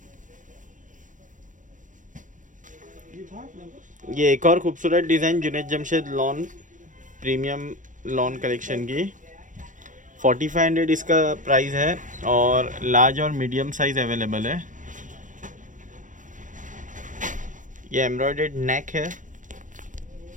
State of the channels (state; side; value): late; left; 0.37 ms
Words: ये एक और खूबसूरत design Junaid Jamshed lawn premium lawn collection की। 4500 इसका प्राइस है और लार्ज और मीडियम साइज़ अवेलेबल है। ये एम्ब्रॉयडर्ड नेक है